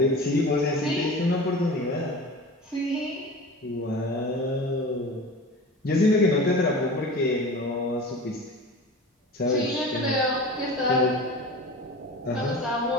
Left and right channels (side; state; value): both; normal; correlation 0.35